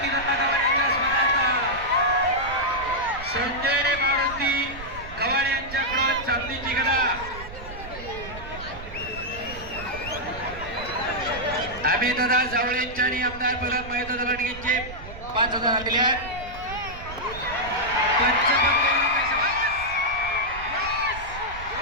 दत्ता गव्हाणे यांच्या स्मरणार्थ संजय मारुती गव्हाणे यांच्याकडून चांदीची गदा. आम्ही दादा जावळेंच्या आणि आमदार प्रल्हाद महेंद्र लांडगेंचे 5,000 दिले आहेत.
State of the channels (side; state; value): right; noise; rumble, 13 dB below the sound